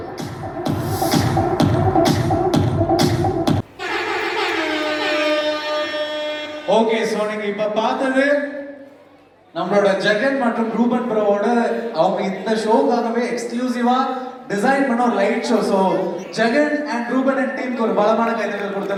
Okay, so நீங்க இப்ப பார்த்தது நம்மளோட ஜெகன் மற்றும் ரூபன் ப்ரோவோட அவங்க இந்த ஷோக்காகவே எக்ஸ்க்ளூசிவா டிசைன் பண்ண ஒரு light show. So Jagan and Ruben and டீமுக்கு ஒரு பலமான கைதட்டல்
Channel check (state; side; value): identical; both; correlation 1.00